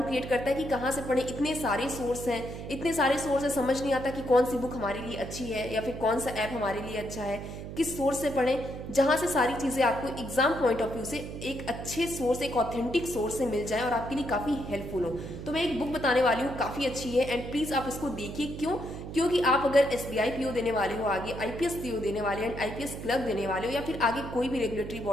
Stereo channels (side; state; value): right; noise; hum, 9 dB below the sound